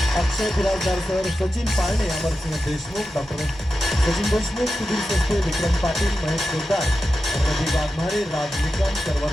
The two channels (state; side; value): normal; both; correlation 0.91